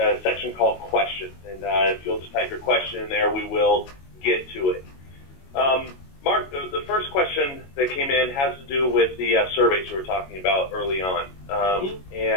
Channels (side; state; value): right; late; 22 ms